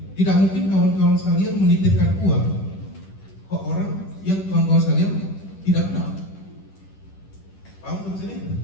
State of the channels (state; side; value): late; right; 10 ms